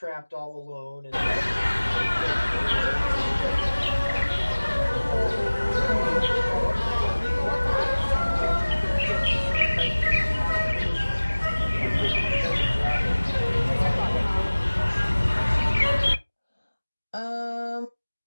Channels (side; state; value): both; inverted; correlation -1.00